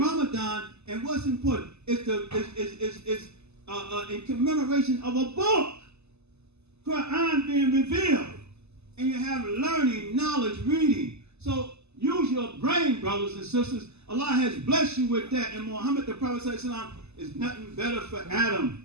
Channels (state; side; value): late; left; 0.80 ms